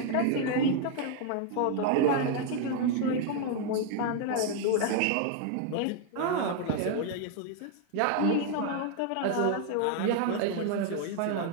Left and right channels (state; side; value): different; both; correlation 0.00